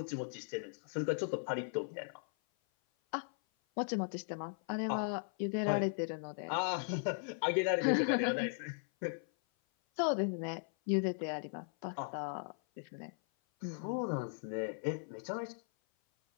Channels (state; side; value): silent; right; 53 dB below the other